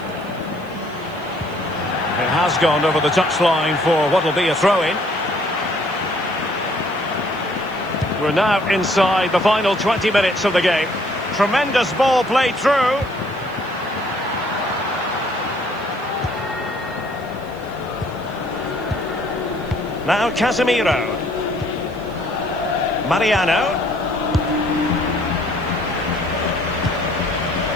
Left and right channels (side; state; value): right; noise; hiss, 27 dB below the sound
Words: It has gone over the touchline for what will be a throw-in. We're now inside the final 20 minutes of the game. Tremendous ball played through. Now Casemiro. Mariano.